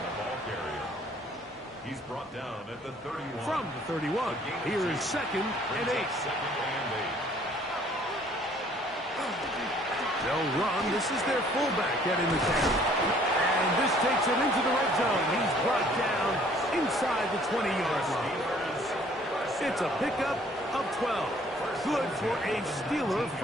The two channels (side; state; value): both; normal; correlation 0.58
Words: Ball carrier. He's brought down at the 31. From the 31. Here is 2nd and 8. 2nd and 8. They'll run. This is their fullback getting the carry. And this takes him into the red zone. He's brought down inside the 20-yard line. It's a pickup of 12. Good for a Steeler